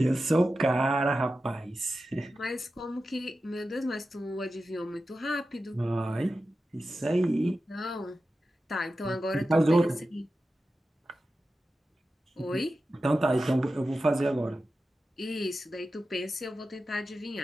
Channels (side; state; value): both; normal; correlation 0.92